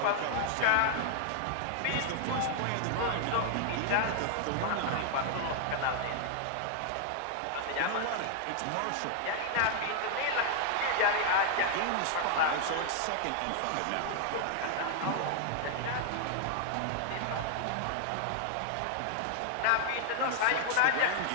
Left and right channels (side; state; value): both; different; correlation 0.00